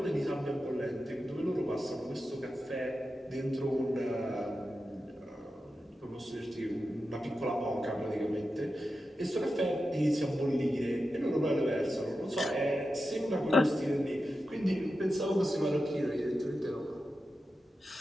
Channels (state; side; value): normal; both; correlation 0.91